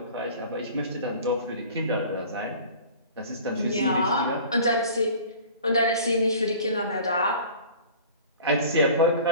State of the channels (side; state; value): both; inverted; correlation -0.43